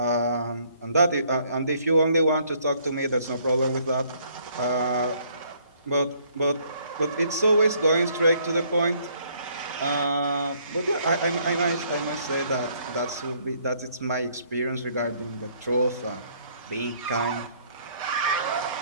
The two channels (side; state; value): both; inverted; correlation -0.65